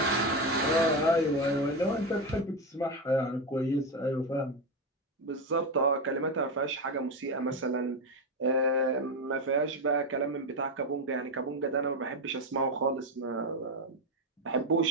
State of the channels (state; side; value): normal; both; correlation 0.13